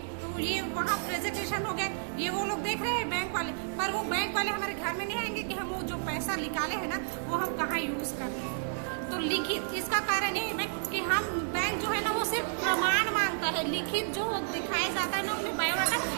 तो ये वहाँ प्रेजेंटेशन हो गया, ये वो लोग देख रहे हैं बैंक वाले, पर वो बैंक वाले हमारे घर में नहीं आएंगे कि हम वो जो पैसा निकाले हैं ना वो हम कहाँ यूज कर रहे हैं। तो लिखित इसका कारण ये है कि हम बैंक जो है ना वो सिर्फ प्रमाण मांगता है, लिखित जो दिखाया जाता है ना उसमें बायोडाटा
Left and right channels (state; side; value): silent; left; digital silence